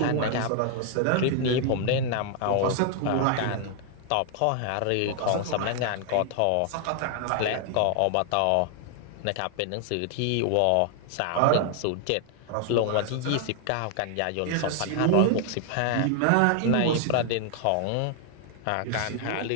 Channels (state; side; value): different; both; correlation 0.00